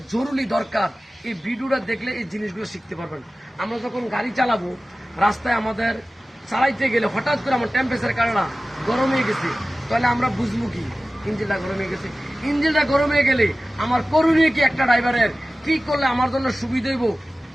জরুরি দরকার। এই ভিডিওটা দেখলে এই জিনিসগুলো শিখতে পারবেন। আমরা যখন গাড়ি চালাবো, রাস্তায় আমাদের চালাইতে গেলে হঠাৎ করে আমার টেম্পারেচার কারণে গরম হয়ে গেছে, তাহলে আমরা বুঝবো কি ইঞ্জিনটা গরম হয়ে গেছে। ইঞ্জিনটা গরম হয়ে গেলে আমার করণীয় কি একটা ড্রাইভারের, কি করলে আমার জন্য সুবিধা হইব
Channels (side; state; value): both; normal; correlation 0.96